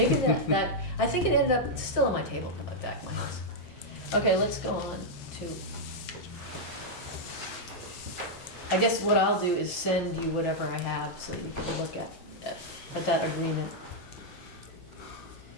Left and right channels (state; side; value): normal; both; correlation -0.04